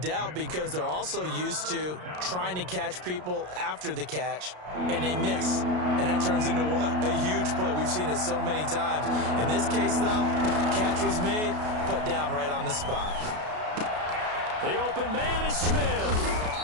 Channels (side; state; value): left; late; 33 ms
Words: because they're also used to trying to catch people after the catch, and they miss. And that turns into what? A huge play. We've seen it so many times. In this case, though, catch was made, put down right on the spot. The open man is Smith.